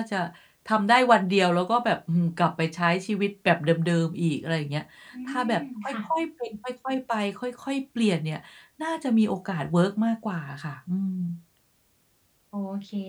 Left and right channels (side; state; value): both; identical; correlation 1.00